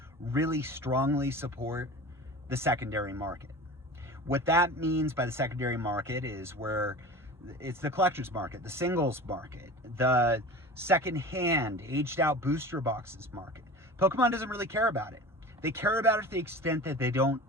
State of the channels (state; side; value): normal; both; correlation 0.35